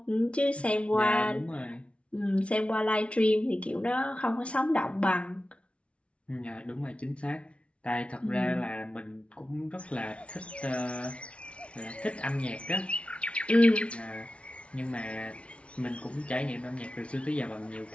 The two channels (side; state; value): right; late; 0.061 ms